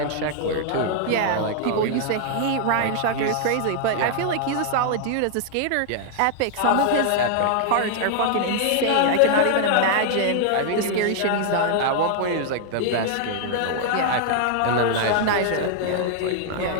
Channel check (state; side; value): different; both; correlation 0.00